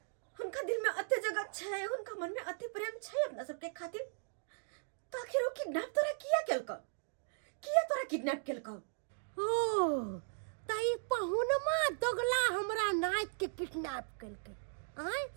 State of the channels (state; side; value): silent; left; digital silence